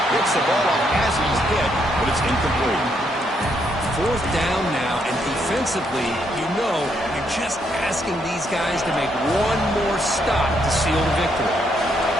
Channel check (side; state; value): both; normal; correlation 0.75